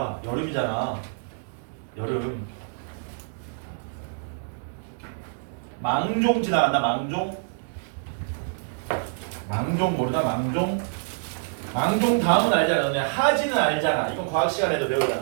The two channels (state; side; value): silent; left; digital silence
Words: 여름이잖아. 여름. 망종 지나간다. 망종. 망종 모르나? 망종. 망종 다음은 알잖아. 너네 하지는 알잖아. 이건 과학 시간에도